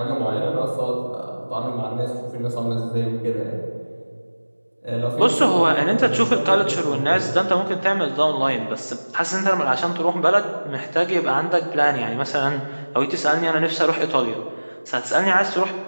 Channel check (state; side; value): inverted; both; correlation -1.00